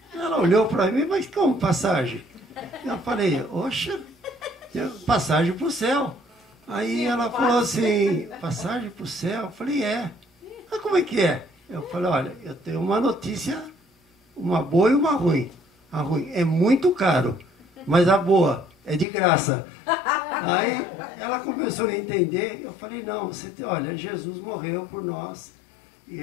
Ela olhou para mim, mas como passagem? Eu falei, oxa, passagem para o céu. Aí ela falou assim, passagem para o céu? Eu falei, é. Mas como é que é? Eu falei, olha, eu tenho uma notícia, uma boa e uma ruim. A ruim é muito caro, mas a boa é de graça. Aí ela começou a entender. Eu falei, não, olha, Jesus morreu por nós, e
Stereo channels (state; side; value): drops out; right; at 19.1 s